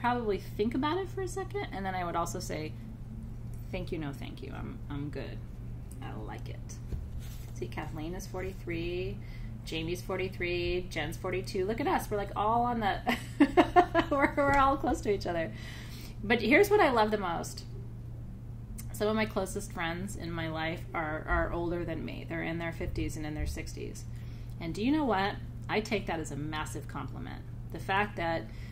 think about it for a second, and then I would also say thank you, no thank you. I'm good. I like it. See, Kathleen is 43, Jamie's 43, Jen's 42. Look at us. We're like all on the... we're all close to each other. But here's what I love the most. Some of my closest friends in my life are older than me. They're in their 50s and in their 60s. And do you know what? I take that as a massive compliment. The fact that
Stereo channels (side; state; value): both; identical; correlation 1.00